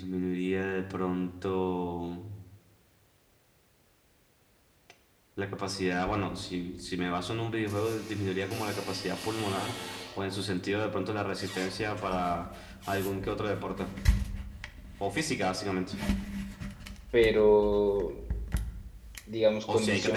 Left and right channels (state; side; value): identical; both; correlation 1.00